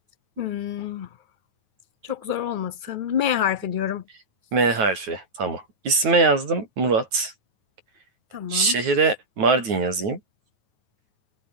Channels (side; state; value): left; late; 9.3 ms